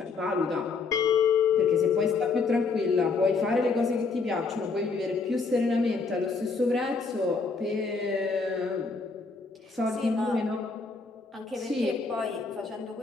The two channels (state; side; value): quieter; right; 4.4 dB